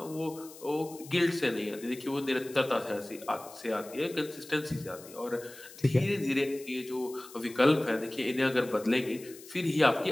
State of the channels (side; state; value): left; noise; hiss, 18 dB below the sound